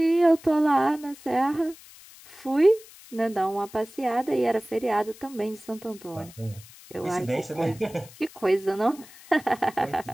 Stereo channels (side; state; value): left; noise; hiss, 21 dB below the sound